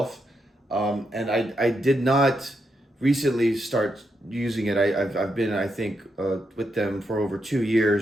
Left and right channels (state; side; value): normal; both; correlation 0.83